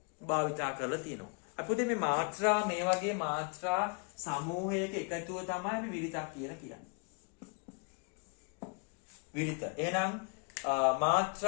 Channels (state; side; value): quieter; right; 37.1 dB